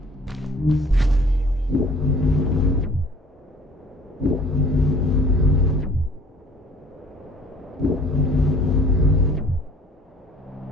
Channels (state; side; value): normal; both; correlation 0.53